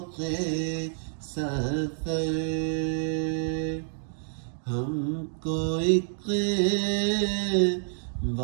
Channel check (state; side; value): silent; left; digital silence